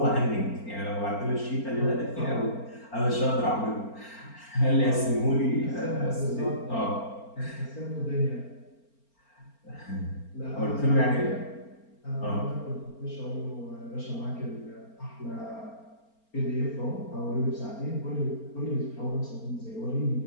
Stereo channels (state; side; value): late; right; 4.4 ms